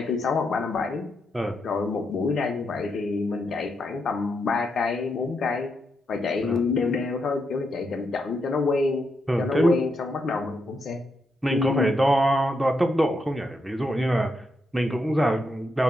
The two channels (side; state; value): both; normal; correlation 0.81